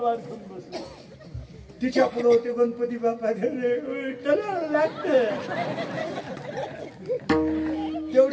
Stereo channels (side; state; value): both; identical; correlation 1.00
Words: घेऊन बसली. तिच्या पुढे होते गणपती बाप्पा, तलवार लागते.